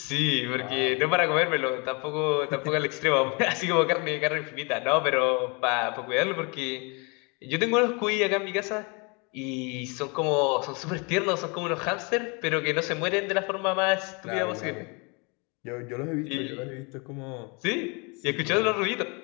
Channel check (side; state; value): right; quieter; 31.4 dB